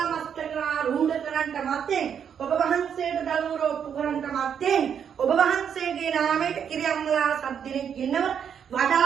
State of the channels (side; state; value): left; quieter; 7.9 dB